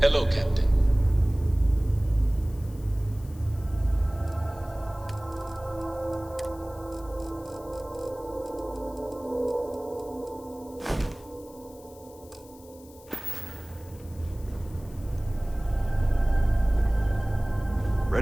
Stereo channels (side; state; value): left; noise; hiss, 24 dB below the sound